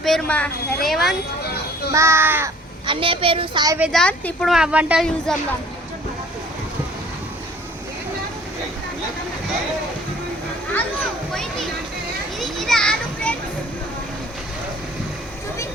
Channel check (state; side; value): normal; both; correlation 0.53